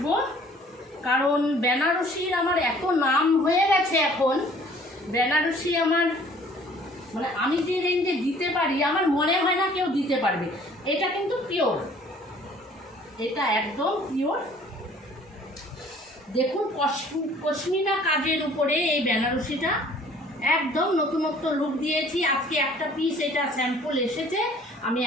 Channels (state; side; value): normal; both; correlation 0.55